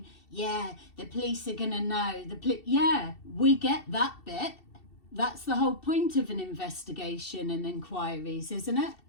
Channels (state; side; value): late; right; 2.7 ms